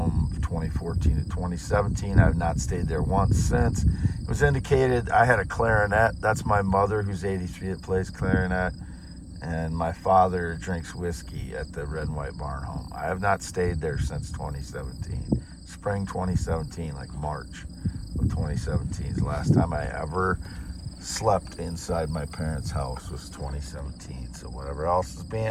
2014 to 2017. I've not stayed there once since. It was indicated I had a clarinet. That's my mother, who's 83, that plays clarinet. And my father drinks whiskey at the red and white barn home. I have not stayed there since 2017. Spring 2017, like March of 2017 is the last time I ever slept inside my parents' house, was 2017. So whatever else is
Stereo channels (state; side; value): identical; both; correlation 1.00